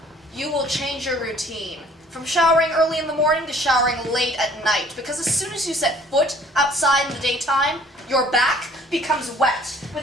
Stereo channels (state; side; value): normal; both; correlation 0.56